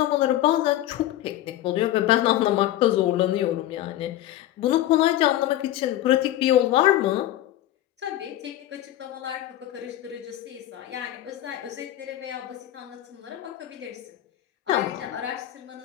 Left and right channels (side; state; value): right; quieter; 13.7 dB